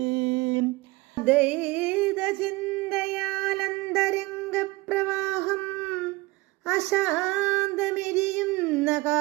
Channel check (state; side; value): quieter; left; 22.2 dB